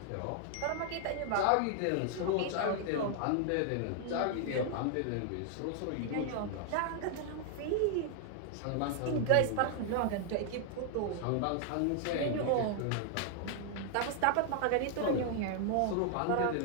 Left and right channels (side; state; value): both; different; correlation 0.00